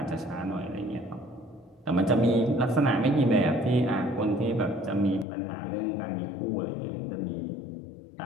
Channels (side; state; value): right; drops out; at 5.2 s